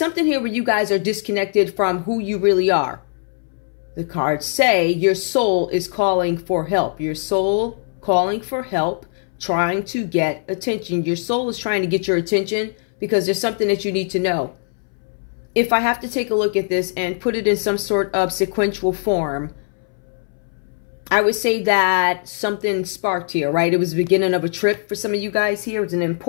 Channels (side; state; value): right; silent; 65 dB below the other